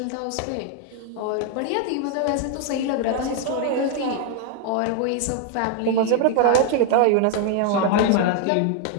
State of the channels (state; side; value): different; both; correlation 0.00